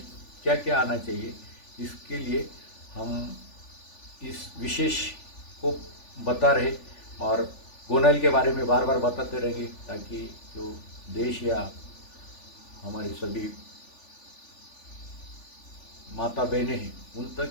क्या क्या आना चाहिए, इसके लिए हम इस विशेष को बता रहे और गोनाइल के बारे में बार बार बताते रहेंगे ताकि जो देश या हमारी सभी माता बहनें हैं उन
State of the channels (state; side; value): late; right; 3.4 ms